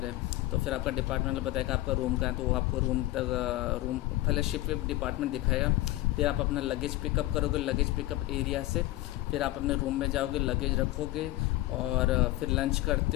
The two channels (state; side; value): quieter; right; 17.1 dB